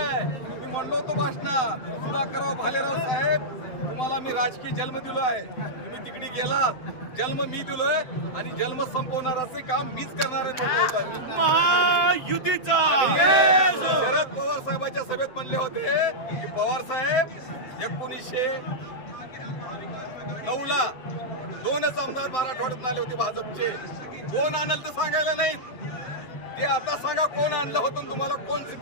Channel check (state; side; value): late; right; 7.8 ms